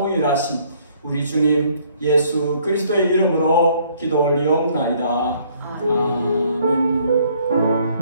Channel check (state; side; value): inverted; both; correlation -0.63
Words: 우리 주님 예수 그리스도의 이름으로 기도 올리옵나이다. 아멘.